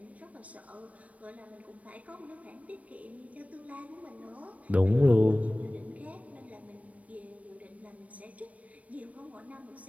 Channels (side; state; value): left; late; 0.067 ms